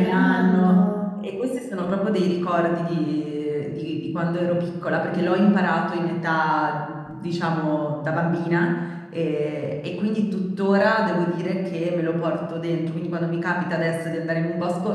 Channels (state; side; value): identical; both; correlation 1.00